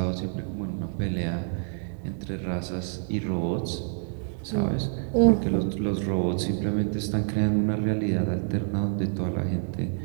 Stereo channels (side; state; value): left; silent; 58 dB below the other